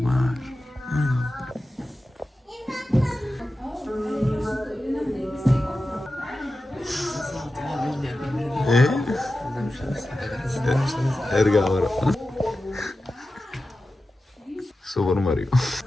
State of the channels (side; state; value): both; normal; correlation 0.93